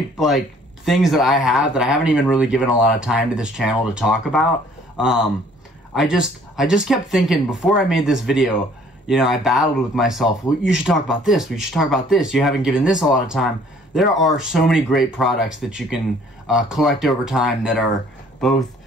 like things that I have that I haven't even really given a lot of time to this channel to talk about. I just kept thinking before I made this video, you know, I battled with myself. Well, you should talk about this. We should talk about this. You haven't given this a lot of time. There are so many great products that you can collect over time that are both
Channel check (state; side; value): normal; both; correlation 0.57